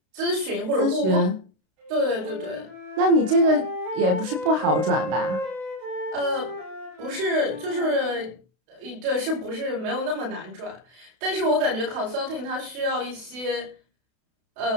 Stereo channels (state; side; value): late; left; 32 ms